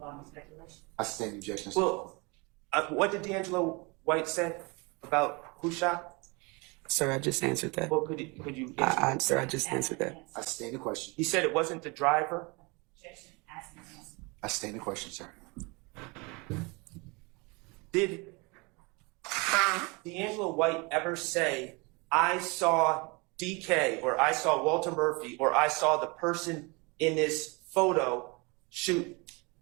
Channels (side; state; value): left; quieter; 28.3 dB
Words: speculation. I stand the objection. Well, what did D'Angelo White say about who shot? Sir, I just answered that. Well, could you answer? Sir, I just answered that. I stand the question. He said it wasn't the driver. Objection, asking the answer. I stand the question, sir. Did D'Angelo White ever say, I saw DK, or I saw Walter Murphy, or I saw the person in this photo shoot